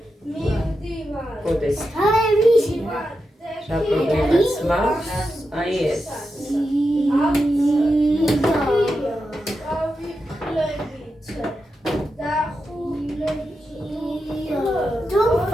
გოდეს რა პრობლემაც მაქვს, აი ეს. Don't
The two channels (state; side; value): normal; both; correlation 0.88